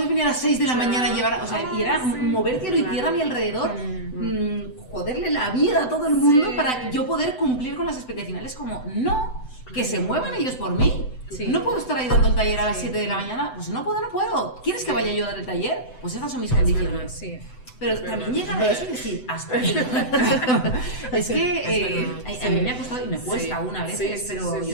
venir a las 6 de la mañana a llevar? O sea, y era mover cielo y tierra a mi alrededor, joderle la vida a todo el mundo para yo poder cumplir con las expectativas. Como, no, que se muevan ellos por mí. No puedo estar ahí dando el taller a las 7 de la mañana, pues no puedo. ¿Quieres que vaya yo a dar el taller? Pues estas son mis condiciones. Pero también llegar a eso y decir, hasta aquí. Es que a mí me ha costado y me cuesta una vez, pero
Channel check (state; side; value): late; right; 7.9 ms